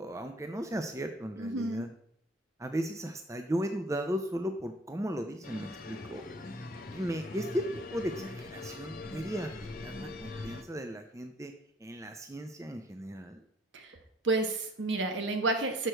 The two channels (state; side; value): normal; both; correlation 0.56